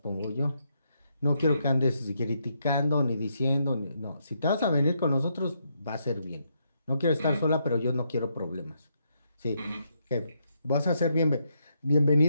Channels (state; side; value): inverted; both; correlation -0.78